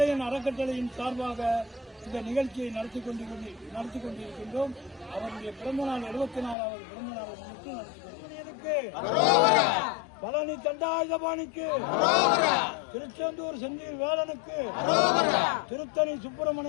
அறக்கட்டளையின் சார்பாக இந்த நிகழ்ச்சியை நடத்தி கொண்டிருக்கின்றோம். அவருடைய பிறந்தநாள் 74வது பிறந்தநாளை முன்னிட்டு நடத்தி கொண்டிருக்கிறோம். பழனி தண்டாயுதபாணிக்கு, திருச்செந்தூர் செந்தில் வேலனுக்கு, திருத்தணி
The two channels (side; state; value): right; drops out; at 6.6 s